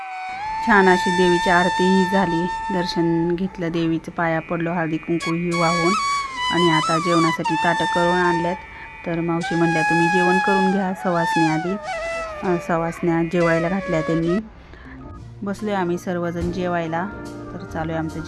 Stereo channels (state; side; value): identical; both; correlation 1.00